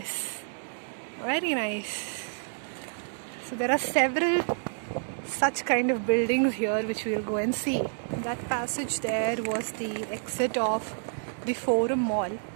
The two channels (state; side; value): silent; left; digital silence